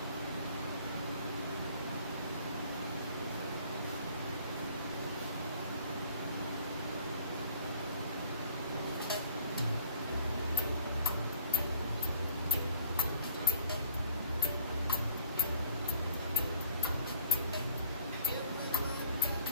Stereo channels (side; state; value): both; inverted; correlation -0.55